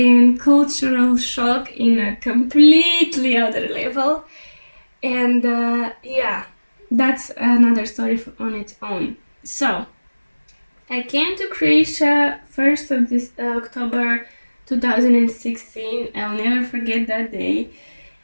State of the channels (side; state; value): both; inverted; correlation -1.00